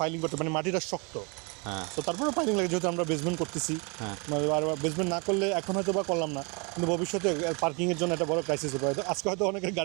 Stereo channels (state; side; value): quieter; left; 31.5 dB